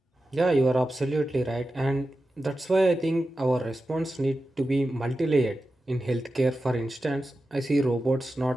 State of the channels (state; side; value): normal; both; correlation 0.92